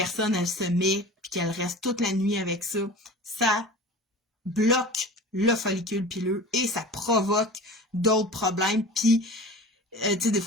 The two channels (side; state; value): both; normal; correlation 0.37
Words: elle se met, puis qu'elle reste toute la nuit avec ça, ça bloque le follicule pileux et ça provoque d'autres problèmes. Puis, tu sais, des